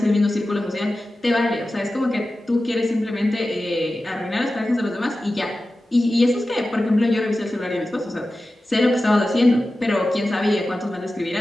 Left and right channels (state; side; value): normal; both; correlation 0.94